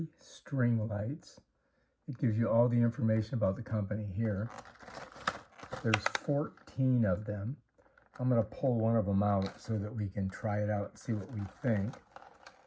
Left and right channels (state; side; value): identical; both; correlation 1.00